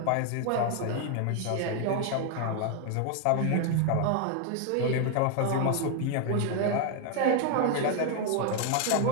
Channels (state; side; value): different; both; correlation 0.00